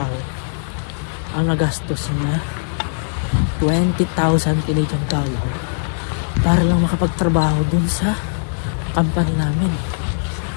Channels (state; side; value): silent; right; 57 dB below the other